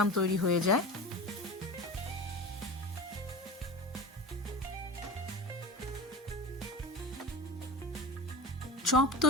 তৈরি হয়ে যায়। চপ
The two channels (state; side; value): normal; both; correlation 0.31